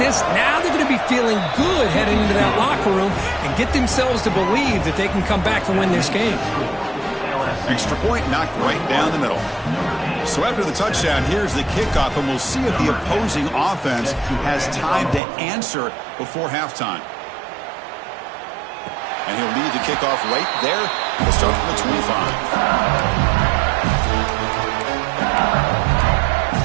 now they're going to be feeling good heading into that locker room and get themselves to believe that they can come back and win this game. Extra point knocked right down the middle. So after the touchdown, here's the kickoff, and we'll see if the opposing offense has time to answer before halftime. And he'll lead the kickoff right there. We'll start from the 25.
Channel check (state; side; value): drops out; left; at 15.2 s